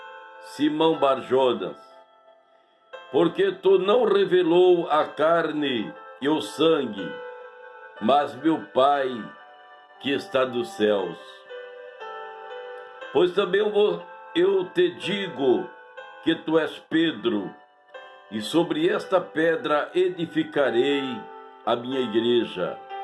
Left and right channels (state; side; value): identical; both; correlation 1.00